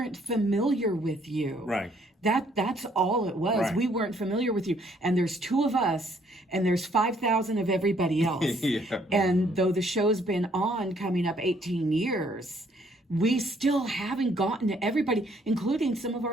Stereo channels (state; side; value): normal; both; correlation 0.65